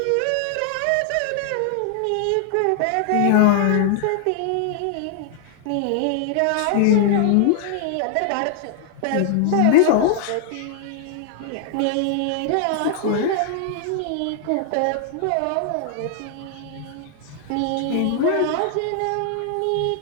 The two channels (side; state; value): both; different; correlation 0.00